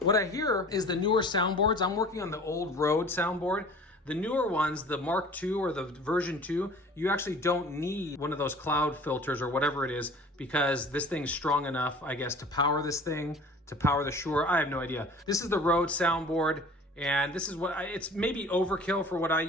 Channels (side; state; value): both; normal; correlation 0.45